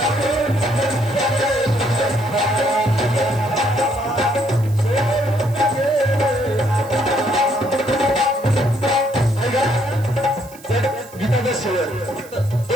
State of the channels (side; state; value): right; noise; hiss, 21 dB below the sound